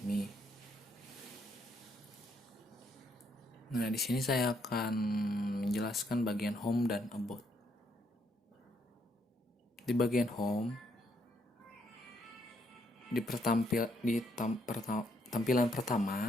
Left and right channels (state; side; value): normal; both; correlation 0.73